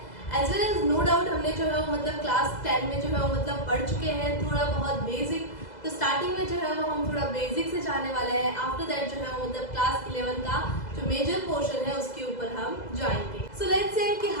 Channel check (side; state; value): right; late; 2.0 ms